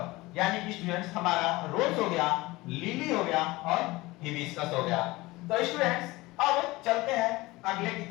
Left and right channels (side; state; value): right; quieter; 20.7 dB